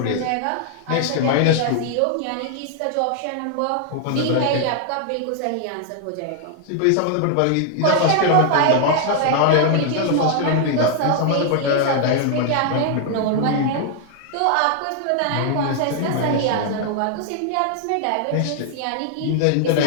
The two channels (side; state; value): both; different; correlation 0.00